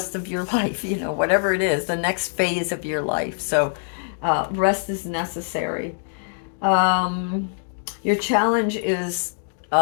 of your life, whatever it is, the next phase of your life. So rest is necessary. Um, your challenge is,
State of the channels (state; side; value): silent; right; digital silence